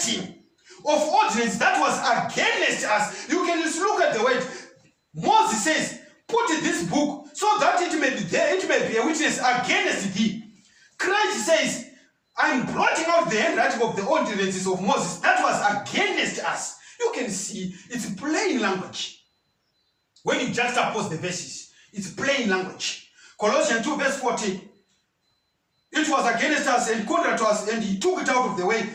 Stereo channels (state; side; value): identical; both; correlation 1.00